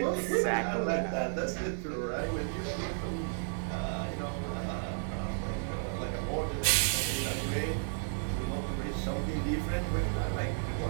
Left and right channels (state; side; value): silent; left; 56 dB below the other